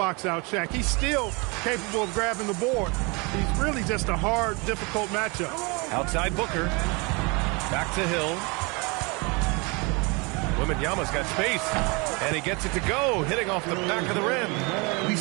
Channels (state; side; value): quieter; left; 28.7 dB